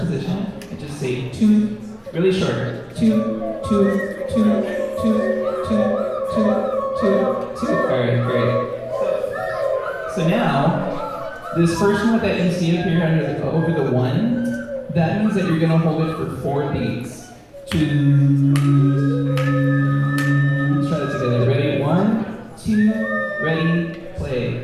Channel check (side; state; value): both; identical; correlation 1.00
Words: and just say to, really short. To. Alright, great. So now, this first note that you see up here over the 1, that means that you're going to hold it for 4 beats. Let's try that together. Ready? 1, 2, ready, play.